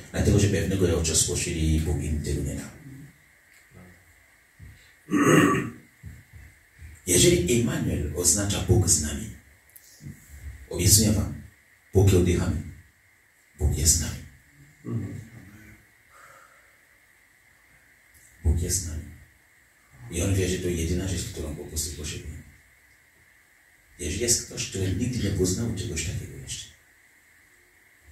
dlatego że pewnego rodzaju spoczyli i Bóg im tego nie dał. Jeżeli Immanuel oznacza Bóg z nami, obiecuję wam, póki oddychamy, Bóg jest z nami. Bóg jest z nami. I on wie, że to jedyna rzecz, którą po prostu potrzebuje. Jeżeli jest ktoś, który nigdy nie poznał czegoś takiego jeszcze,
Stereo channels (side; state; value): both; identical; correlation 1.00